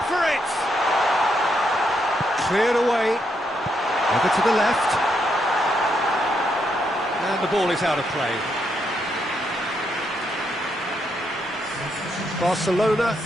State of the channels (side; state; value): both; normal; correlation 0.78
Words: for it! Cleared away. Over to the left. And the ball is out of play. Barcelona